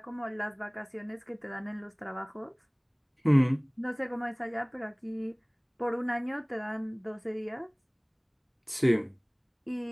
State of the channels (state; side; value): identical; both; correlation 1.00